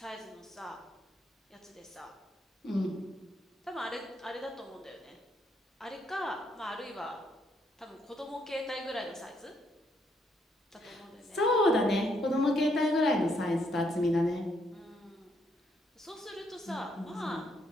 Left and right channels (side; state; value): both; normal; correlation 0.73